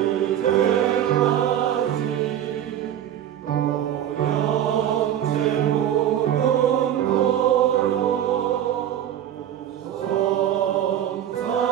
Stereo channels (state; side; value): quieter; left; 10.8 dB